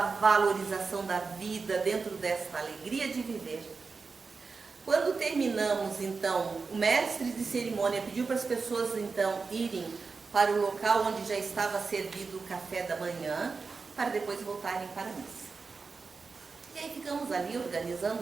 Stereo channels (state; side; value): quieter; left; 4.6 dB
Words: valorização da vida, dentro desta alegria de viver. Quando terminamos, então, o mestre de cerimônia pediu para as pessoas, então, irem para o local onde já estava servido o café da manhã, para depois voltarem para a missa. E aí ficamos ali